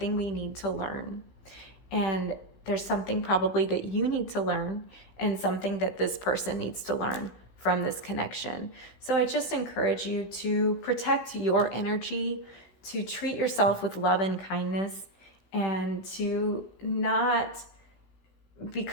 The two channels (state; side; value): late; right; 16 ms